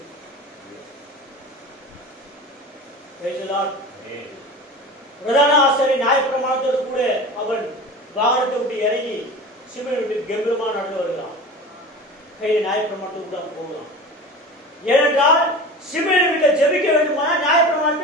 பிரதான ஆசாரியர் நியாயப்பிரமாணத்தோடு கூட அவன் வாகனத்தை விட்டு இறங்கி சிமியோன் வீட்டுக்கு கம்பீரமா நடந்து வருகிறான். கையில் நியாயப்பிரமாணத்துக்கு கூட போகலாம். ஏனென்றால் சிமியோன் வீட்டில் ஜெபிக்க வேண்டுமானால்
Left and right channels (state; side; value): normal; both; correlation 0.33